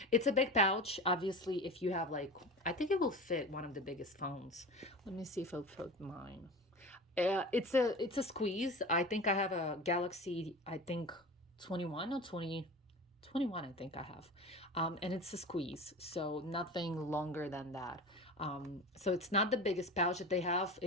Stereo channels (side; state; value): both; normal; correlation 0.32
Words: It's a big pouch. Obviously, if you have like, I think it will fit one of the biggest phones. Let me see if I'll put mine. It's a squeeze. I think I have a Galaxy, I think 21 or 20. 21, I think I have. And it's a squeeze, so nothing longer than that. So it's not the biggest pouch that they have.